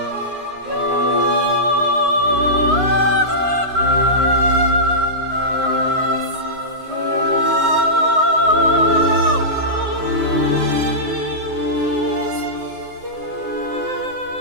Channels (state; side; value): late; left; 9.6 ms